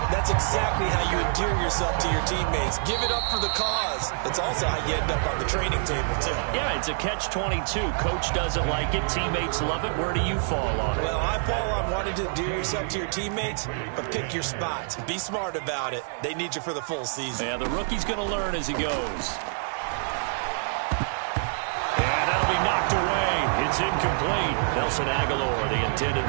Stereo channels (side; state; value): left; silent; digital silence